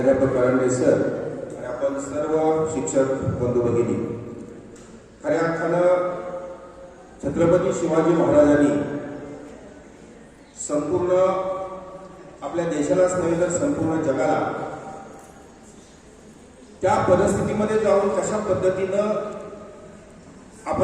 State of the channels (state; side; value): identical; both; correlation 1.00